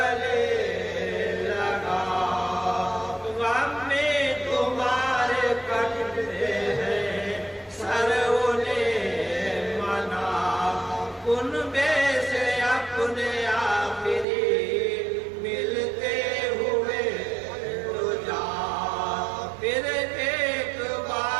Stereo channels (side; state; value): left; drops out; at 14.2 s